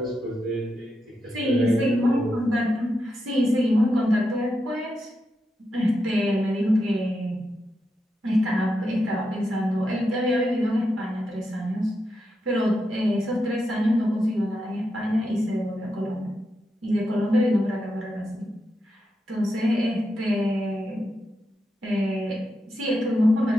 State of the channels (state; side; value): normal; both; correlation 0.86